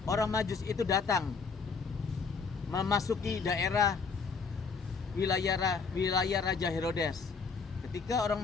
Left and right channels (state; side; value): quieter; right; 5.1 dB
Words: orang Majus itu datang memasuki daerah wilayah Raja Herodes. Ketika orang